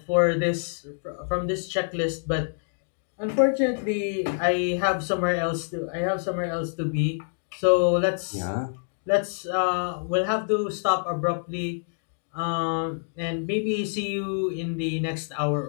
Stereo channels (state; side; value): silent; right; digital silence